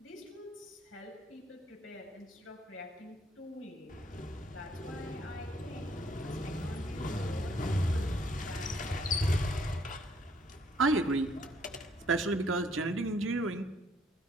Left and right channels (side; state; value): both; normal; correlation 0.66